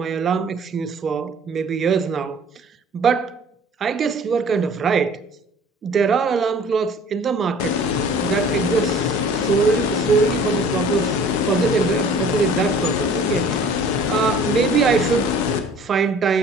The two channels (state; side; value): normal; both; correlation 0.49